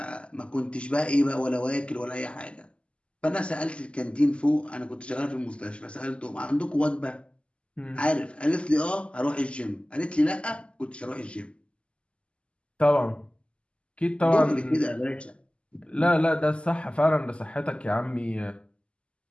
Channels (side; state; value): right; late; 0.055 ms